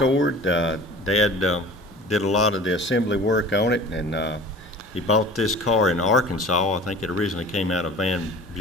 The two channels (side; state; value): both; normal; correlation 0.41